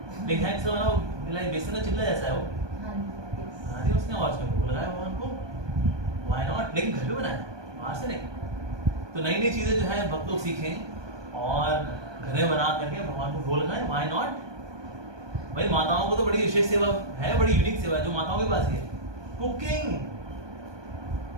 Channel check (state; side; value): late; left; 1.2 ms